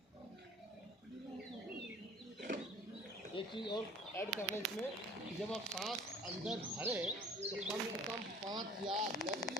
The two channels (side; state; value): both; normal; correlation 0.49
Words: एक चीज़ और ऐड करना इसमें, जब आप सांस अंदर भरें तो कम से कम 5 या 10